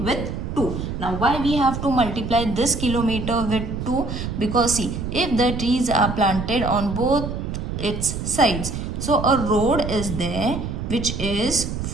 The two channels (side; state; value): right; noise; rumble, 5 dB below the sound